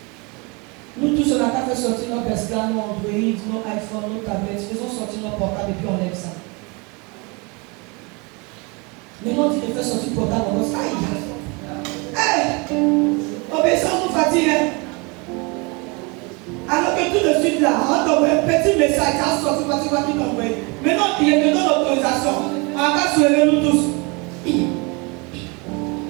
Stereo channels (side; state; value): left; quieter; 29.4 dB